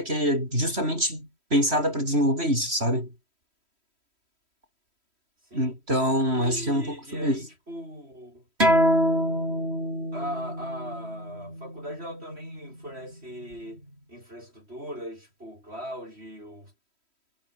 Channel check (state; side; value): late; left; 3.1 ms